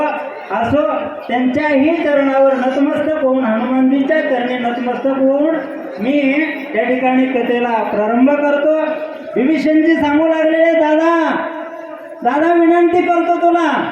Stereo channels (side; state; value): both; identical; correlation 1.00